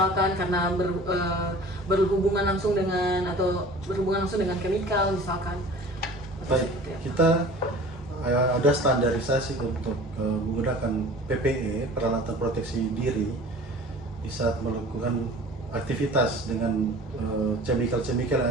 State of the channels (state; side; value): normal; both; correlation 0.43